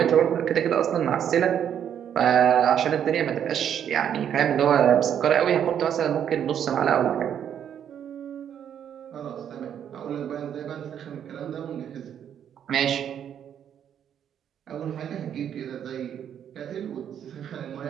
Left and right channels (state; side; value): quieter; left; 9.1 dB